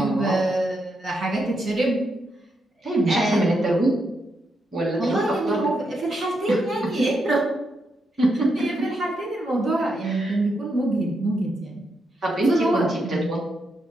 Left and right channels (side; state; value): both; normal; correlation 0.81